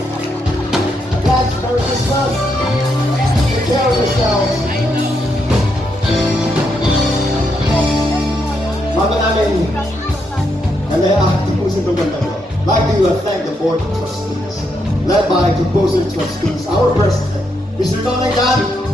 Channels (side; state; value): both; normal; correlation 0.79